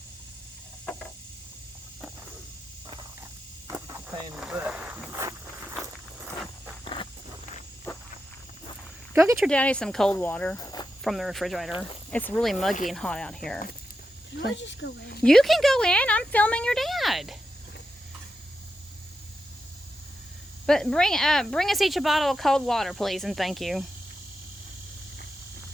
pain in the butt. Go get your daddy some cold water from the refrigerator. It's really muggy and hot out here. Can I just go in? You can go in. I'm filming your dad. But bring us each a bottle of cold water, please, and thank you.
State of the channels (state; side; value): normal; both; correlation 0.88